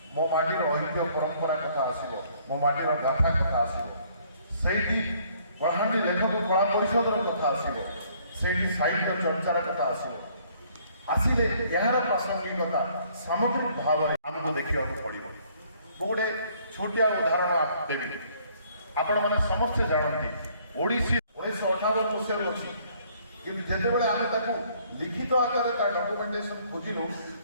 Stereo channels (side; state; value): both; inverted; correlation -0.62